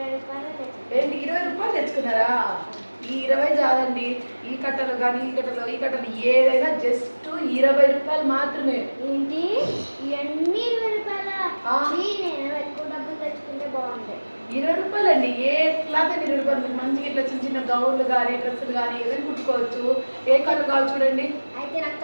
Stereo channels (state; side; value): inverted; both; correlation -1.00